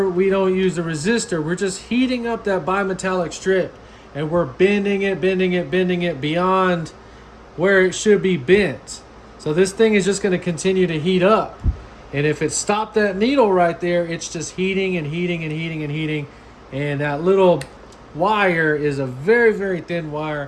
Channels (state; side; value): identical; both; correlation 1.00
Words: we don't use the resistor, we're just heating up that bimetallic strip, and we're bending it beyond where it should be bent. So this thing is just going to continue to heat up. And if it stopped that needle right there, it's just heating and heating and heating and heating. And that little wire is a very, very thin